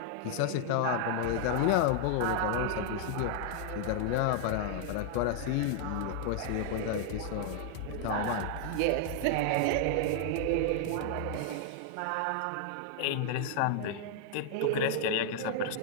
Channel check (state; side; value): different; both; correlation 0.00